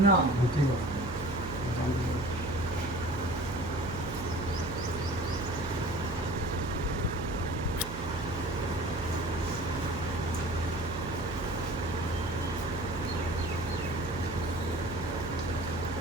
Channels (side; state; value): right; noise; hum, 9 dB below the sound